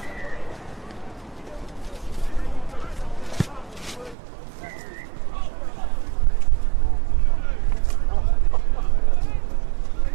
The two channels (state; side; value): drops out; left; at 4.2 s